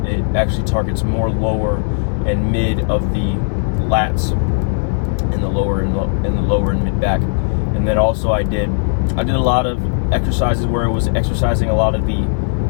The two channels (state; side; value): silent; right; digital silence